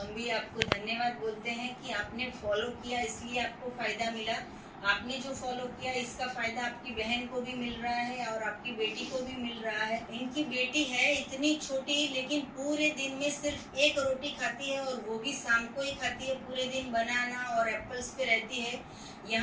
भी आपको धन्यवाद बोलते हैं कि आपने फॉलो किया, इसलिए आपको फायदा मिला। आपने जो फॉलो किया इसका फायदा आपकी बहन को भी मिल रहा है और आपकी बेटी को भी मिल रहा है। इनकी बेटी है इतनी छोटी, लेकिन पूरे दिन में सिर्फ एक रोटी खाती है और वो भी शाम को ही खाती है। पूरे दिन बनाना और एप्पल्स पे रहती है।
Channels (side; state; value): both; identical; correlation 1.00